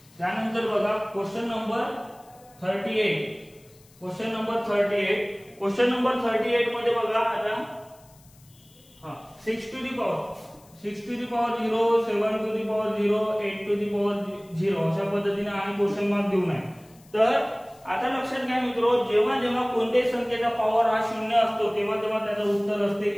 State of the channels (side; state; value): left; noise; hiss, 28 dB below the sound